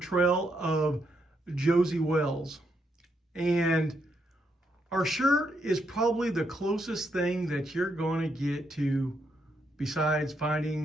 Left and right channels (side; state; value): both; normal; correlation 0.78